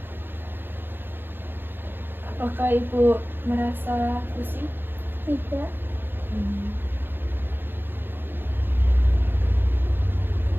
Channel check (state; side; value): late; left; 0.10 ms